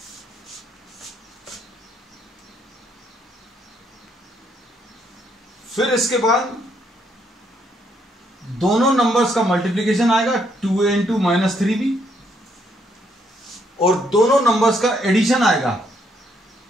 फिर इसके बाद दोनों नंबर्स का मल्टीप्लिकेशन आएगा 2a into -3b, और दोनों नंबर्स का एडिशन आएगा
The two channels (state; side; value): normal; both; correlation 0.72